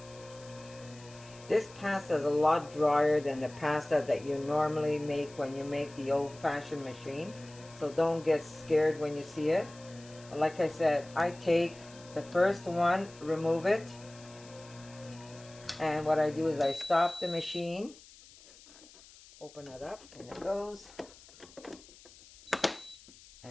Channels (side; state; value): left; noise; hiss, 22 dB below the sound